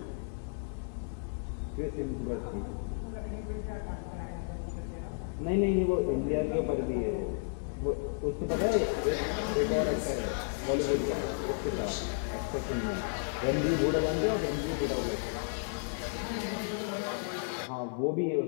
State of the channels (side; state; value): right; silent; digital silence